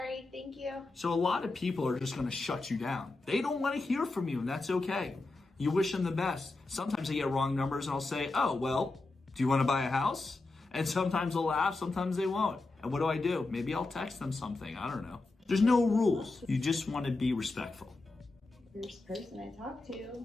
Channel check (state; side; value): quieter; right; 3.3 dB